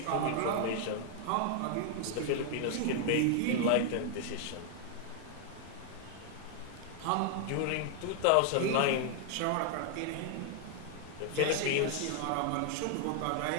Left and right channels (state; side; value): different; both; correlation 0.00